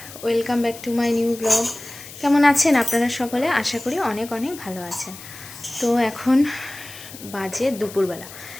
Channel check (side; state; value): left; noise; hiss, 15 dB below the sound